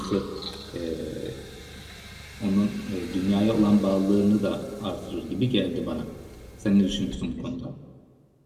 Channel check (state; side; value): identical; both; correlation 1.00